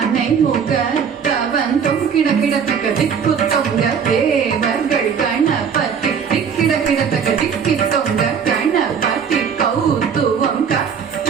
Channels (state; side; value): quieter; left; 6.9 dB